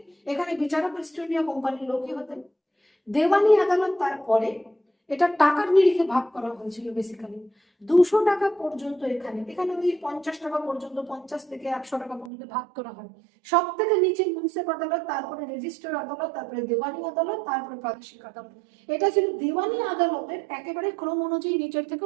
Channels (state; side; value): drops out; left; at 12.3 s